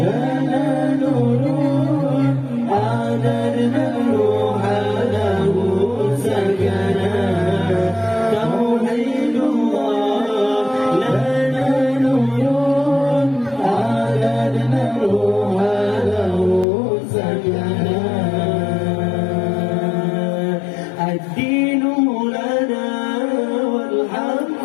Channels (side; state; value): right; drops out; at 16.7 s